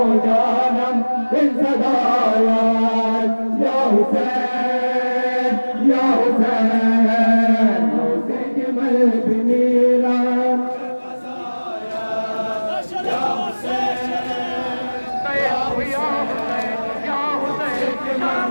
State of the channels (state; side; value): inverted; both; correlation -1.00